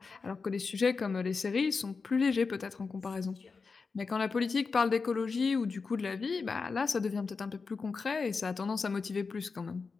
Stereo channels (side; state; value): right; quieter; 4.7 dB